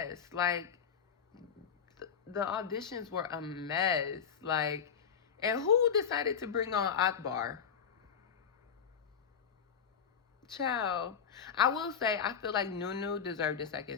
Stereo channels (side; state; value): right; quieter; 7.2 dB